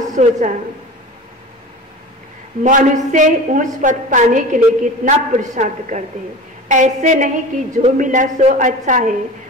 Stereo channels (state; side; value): normal; both; correlation 0.34